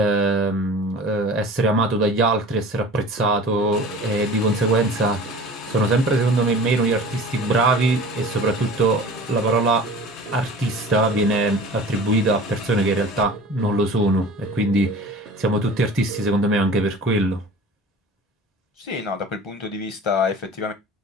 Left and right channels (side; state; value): both; normal; correlation 0.40